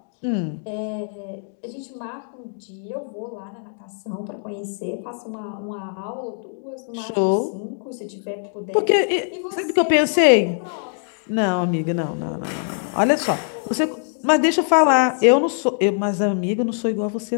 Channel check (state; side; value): silent; right; 64 dB below the other